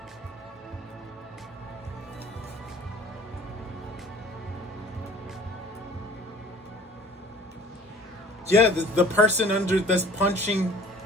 Yeah, the person under that's punching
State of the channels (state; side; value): normal; both; correlation 0.49